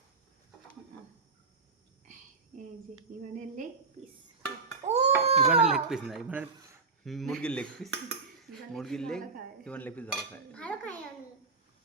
এই যে ইভানের লেগ পিস। ইভানের লেগ পিস না, ইভানের মুরগির লেগ পিস। মুরগির লেগ, ইভান লেগ পিস ভালো খায়। আমি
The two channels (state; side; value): quieter; left; 4.5 dB